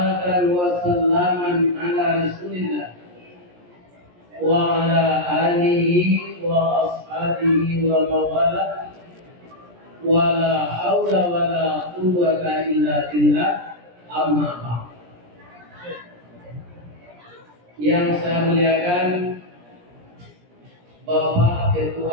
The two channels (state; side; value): late; left; 17 ms